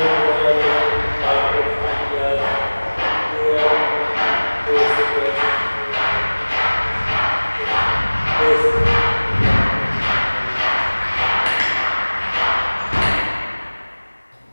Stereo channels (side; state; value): both; inverted; correlation -1.00